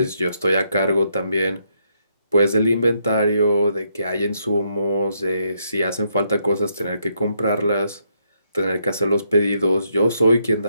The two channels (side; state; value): both; inverted; correlation -0.76